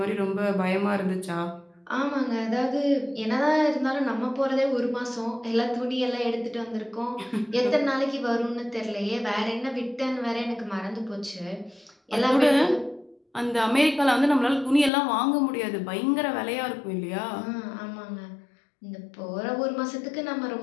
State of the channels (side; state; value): right; drops out; at 14.9 s